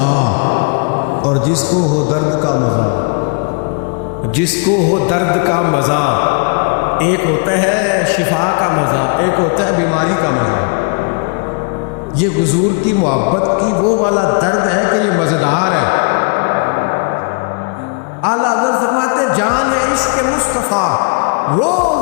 اور جس کو ہو درد کا مزہ، جس کو ہو درد کا مزہ، ایک ہوتا ہے شفا کا مزہ، ایک ہوتا ہے بیماری کا مزہ. یہ حضور کی محبت کی وہ والا درد ہے کہ یہ مزیدار ہے. اعلیٰ حضرت فرماتے جان ہے عشق مصطفیٰ، روز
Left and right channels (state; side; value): quieter; right; 39.7 dB